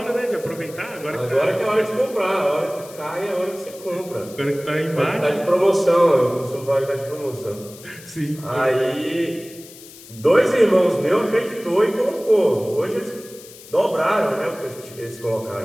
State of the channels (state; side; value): noise; left; hiss, 19 dB below the sound